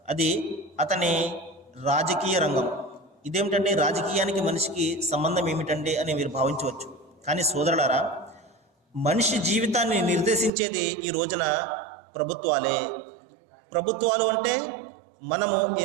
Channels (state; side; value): drops out; left; at 10.5 s